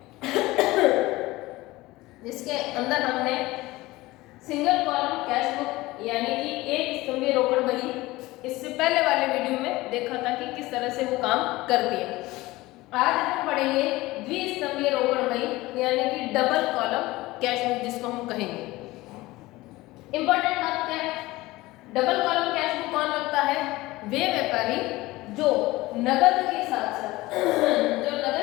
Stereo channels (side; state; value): right; quieter; 19.4 dB